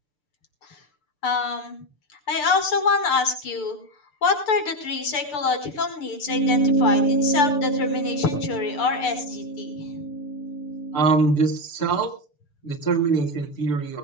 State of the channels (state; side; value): late; right; 6.7 ms